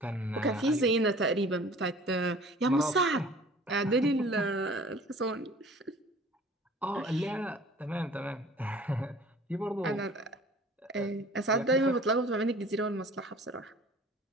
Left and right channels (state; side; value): normal; both; correlation 0.48